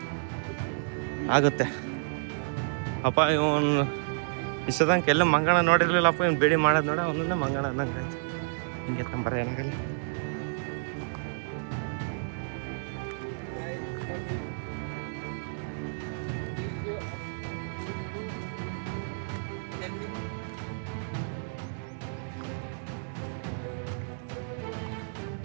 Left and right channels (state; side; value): silent; left; digital silence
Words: ಆಗುತ್ತೆ ಅಪ್ಪ. ಇವನು ಇಷ್ಟದಂಗೆ ಎಲ್ಲ ಮಂಗಣ ನೋಡಿರ್ಲಿಲ್ಲಪ್ಪ, ಇವ್ನು ಬೇಡಿ ಮಾಡೋದು ನೋಡ ಅವನನ್ನ ಮಂಗಣ ಅಂದಂಗೆ ಆಯ್ತು. ಹಿಂಗೆ ತಂಬರ ಏನಾಗಲ್ಲ.